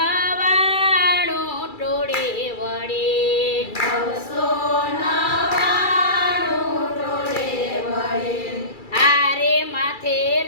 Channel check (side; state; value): right; late; 2.3 ms